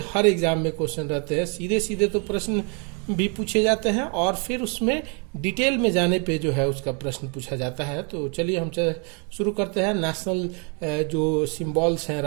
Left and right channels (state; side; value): quieter; left; 36.3 dB